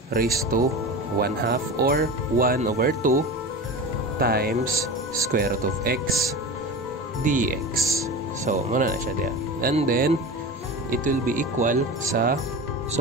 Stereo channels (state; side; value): normal; both; correlation 0.29